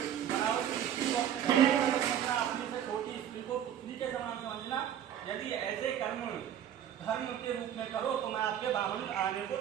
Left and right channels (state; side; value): quieter; left; 10.0 dB